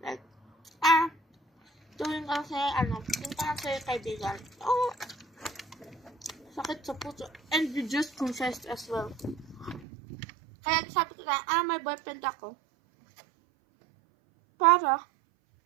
like, tuwing kasi, yung parang sa'yo kaibigan. Sakit sa puso. And you just confessed as well. Kaya sabi ko na, may boyfriend ako. Para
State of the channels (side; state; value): left; drops out; at 9.9 s